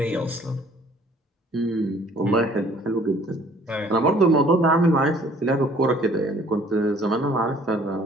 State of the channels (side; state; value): both; normal; correlation 0.56